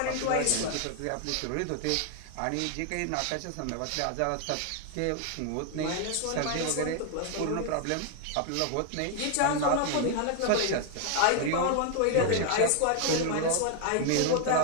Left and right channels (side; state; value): both; different; correlation 0.00